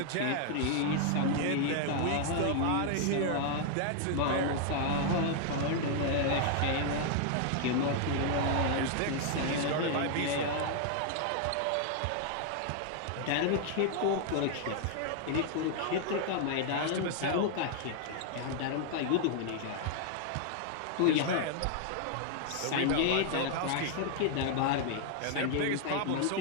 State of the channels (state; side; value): different; both; correlation 0.00